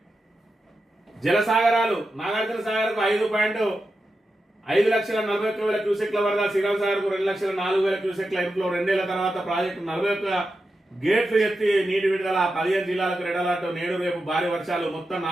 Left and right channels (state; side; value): normal; both; correlation 0.90